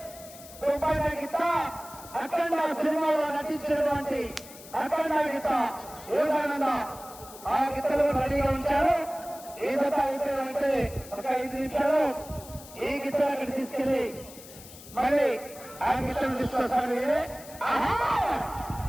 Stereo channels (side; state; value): left; noise; hiss, 17 dB below the sound